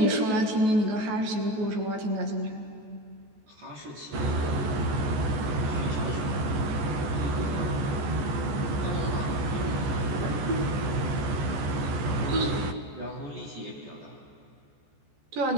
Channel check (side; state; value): left; late; 14 ms